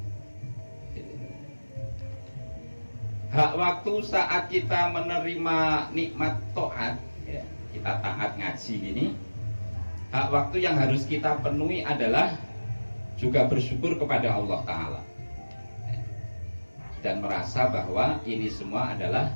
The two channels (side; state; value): both; inverted; correlation -1.00